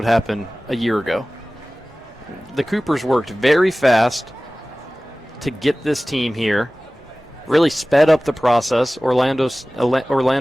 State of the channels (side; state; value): both; normal; correlation 0.98